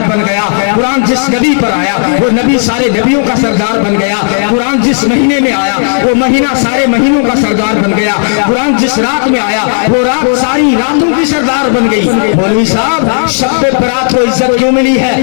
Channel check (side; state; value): right; silent; digital silence